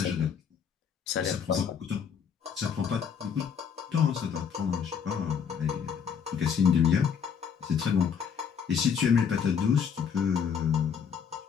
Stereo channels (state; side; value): quieter; right; 7.1 dB